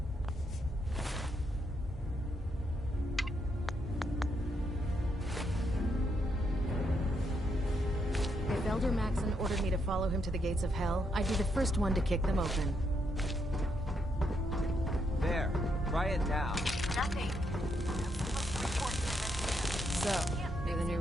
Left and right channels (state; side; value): normal; both; correlation 0.78